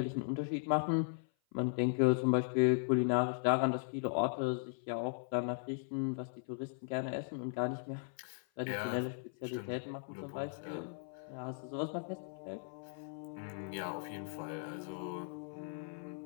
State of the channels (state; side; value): silent; right; 53 dB below the other